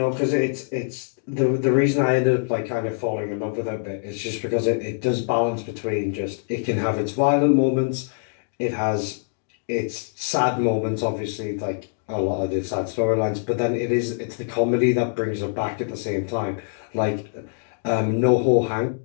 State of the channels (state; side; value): silent; right; digital silence